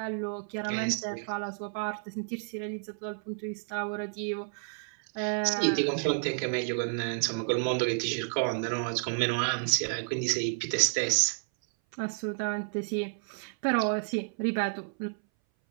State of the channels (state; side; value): silent; left; 57 dB below the other